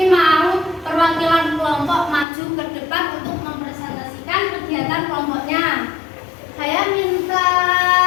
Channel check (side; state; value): right; drops out; at 2.2 s